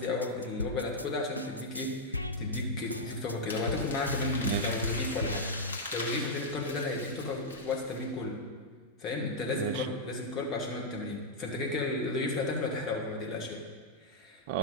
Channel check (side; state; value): both; normal; correlation -0.05